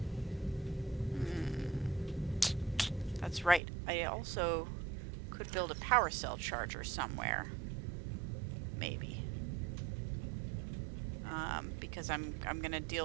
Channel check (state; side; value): drops out; left; at 3.6 s